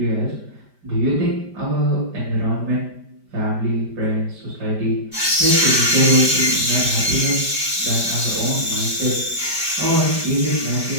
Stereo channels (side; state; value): left; late; 5.1 ms